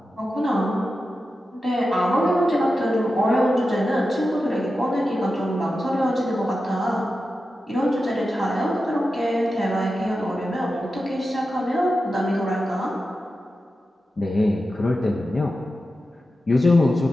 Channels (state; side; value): normal; both; correlation 0.91